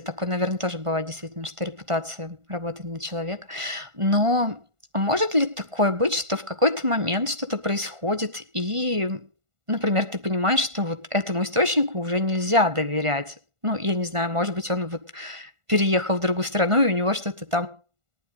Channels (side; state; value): left; late; 1.5 ms